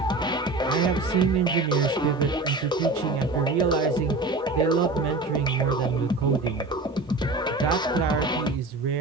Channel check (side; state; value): left; quieter; 3.2 dB